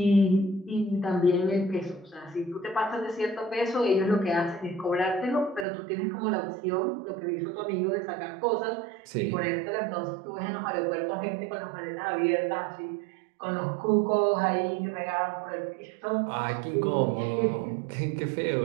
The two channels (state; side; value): drops out; left; at 5.7 s